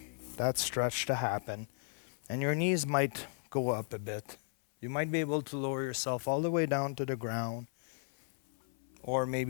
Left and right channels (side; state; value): right; silent; 54 dB below the other